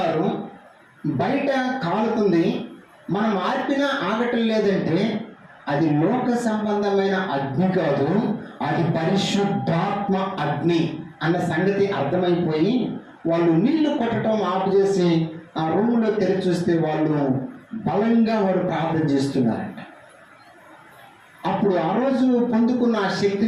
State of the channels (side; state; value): both; identical; correlation 1.00